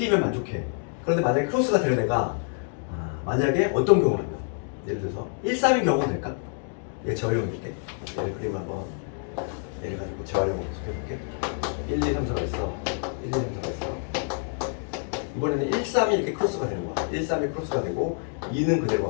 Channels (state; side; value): silent; right; 59 dB below the other